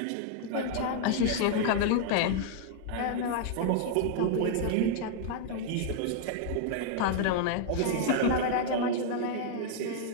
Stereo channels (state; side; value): different; both; correlation -0.01